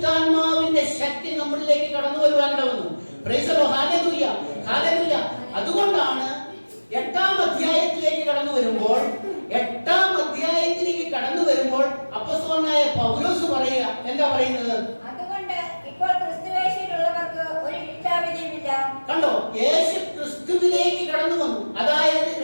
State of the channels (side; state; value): both; inverted; correlation -1.00